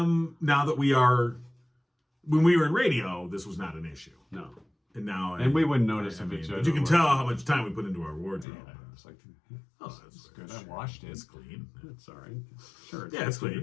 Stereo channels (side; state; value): right; drops out; at 8.5 s